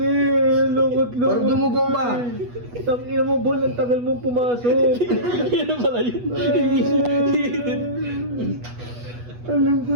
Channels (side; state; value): left; late; 8.2 ms